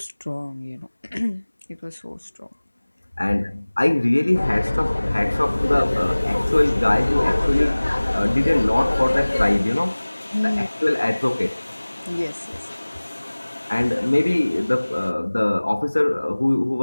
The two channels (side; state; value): both; inverted; correlation -1.00